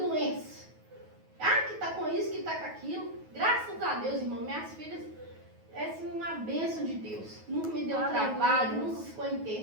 Ah, que tá com isso, que tá com aquilo. Graças a Deus, irmão, minhas filhas, é assim, uma bênção de Deus. Nunca me deu trabalho, nunca ficou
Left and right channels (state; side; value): late; left; 9.3 ms